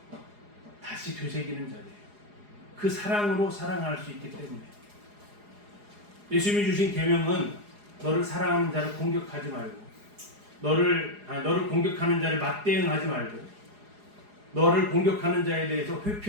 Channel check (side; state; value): left; late; 4.8 ms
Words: 다시 되새기는 자리예요. 그 사랑으로 사랑할 수 있기 때문에. 예수님이 주신 계명은 너를 사랑하는 자를 공격하지 말고 너를 공격하는 자를 맞대응하지 말고 너를 공격하는 자에 대해서